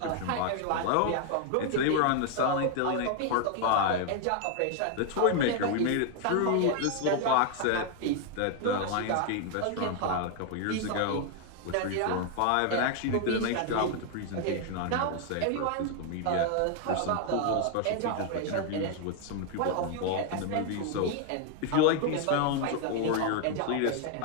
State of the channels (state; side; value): different; both; correlation 0.00